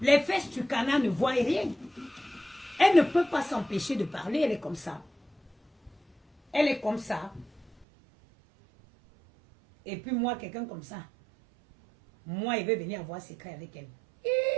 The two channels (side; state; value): left; drops out; at 7.9 s